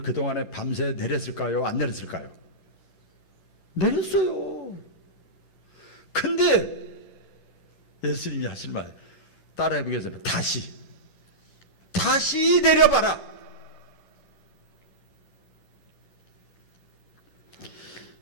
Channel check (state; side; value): late; right; 11 ms